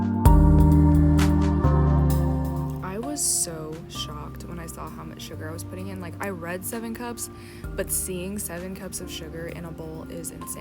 Sugar I was putting in. Like, I read 7 cups, but seeing 7 cups of sugar in a bowl is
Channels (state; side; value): identical; both; correlation 1.00